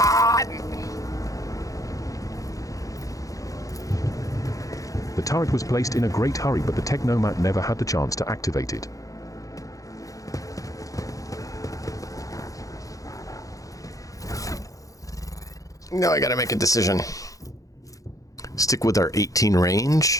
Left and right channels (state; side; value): late; right; 0.16 ms